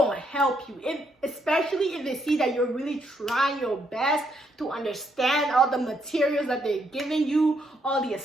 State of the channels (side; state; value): both; normal; correlation 0.74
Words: help you. Especially if they see that you're really trying your best to understand all the materials that they're giving you, all the